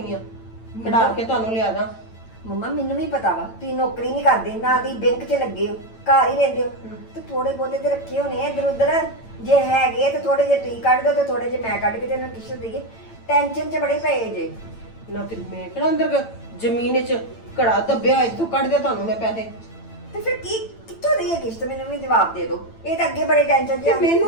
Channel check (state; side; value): late; right; 8.9 ms